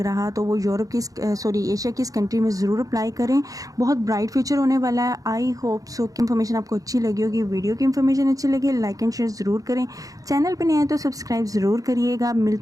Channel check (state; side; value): late; left; 0.17 ms